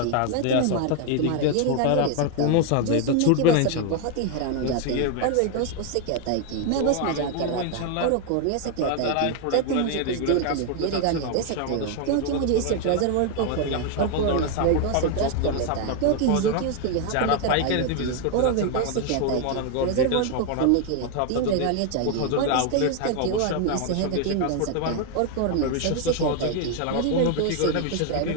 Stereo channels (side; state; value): both; different; correlation 0.01